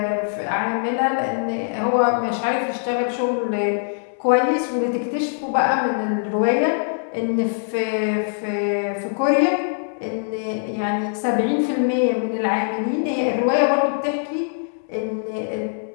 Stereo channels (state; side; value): silent; right; digital silence